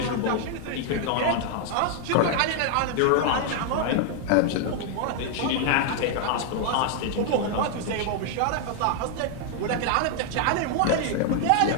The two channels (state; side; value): different; both; correlation 0.00